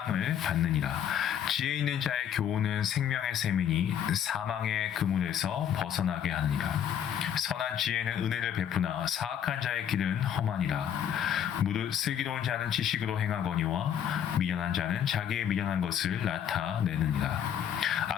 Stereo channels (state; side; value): quieter; right; 9.2 dB